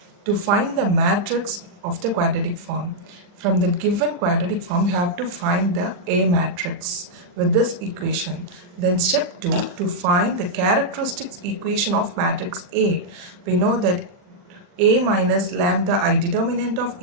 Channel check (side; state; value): left; late; 40 ms